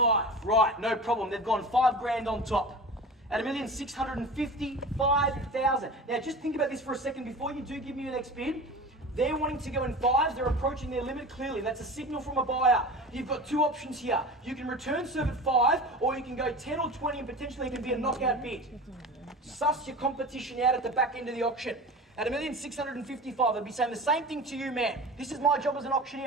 Right, no problem. They've gone 5 grand on top. At $1,655,000. Now, just think about this for a second before you do give me your next bid. They're wanting to go in 5s. They're approaching their limit clearly. That's a signal from a buyer. You've got 2 options here. You can return serve at 5, or you can go 10 or 20 and potentially it can be a knockout bid. Suss your competition out at the back end of the auction. At $1,655,000, they'd be saying the same thing to you, man. This is my job as an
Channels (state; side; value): normal; both; correlation 0.34